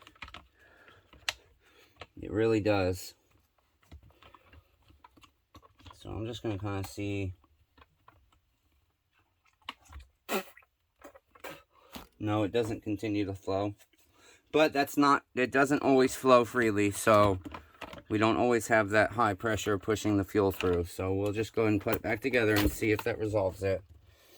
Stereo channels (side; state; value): both; identical; correlation 1.00